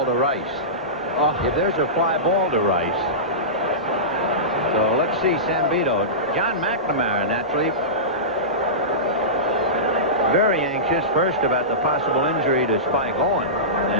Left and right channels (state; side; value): normal; both; correlation -0.19